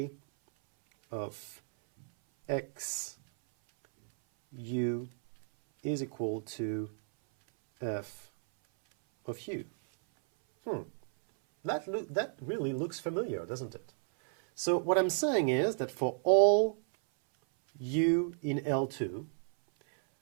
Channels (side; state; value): left; silent; 56 dB below the other